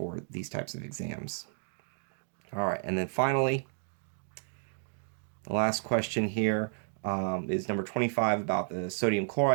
these types of exams. All right, and then finally, the last question here is number 25 about the sodium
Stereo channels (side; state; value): left; silent; digital silence